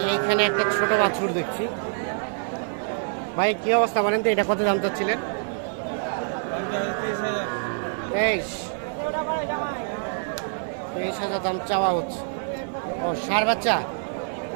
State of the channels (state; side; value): silent; left; digital silence